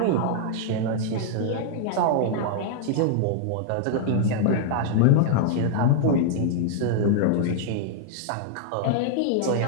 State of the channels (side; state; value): both; different; correlation -0.01